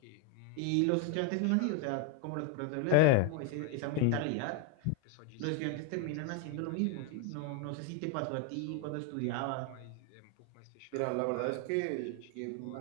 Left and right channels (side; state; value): both; different; correlation 0.01